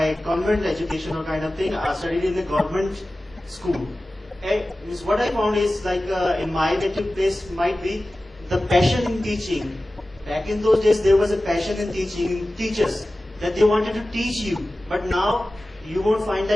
convent education or kind of thing. I studied in the government school. And what I found is like in my native place might be the passion in teaching. Back in those days, there was a passion in teaching, in teachers, that they wanted to teach you. But now, you won't find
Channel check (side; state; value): both; normal; correlation 0.96